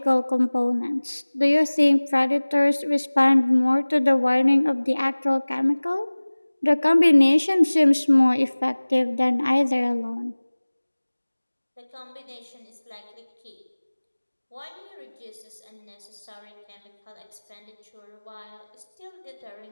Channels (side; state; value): both; inverted; correlation -1.00